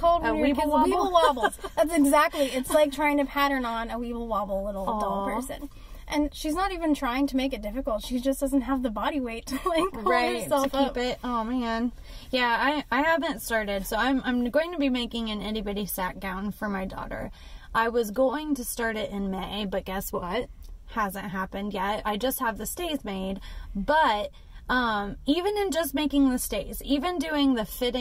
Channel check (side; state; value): both; identical; correlation 1.00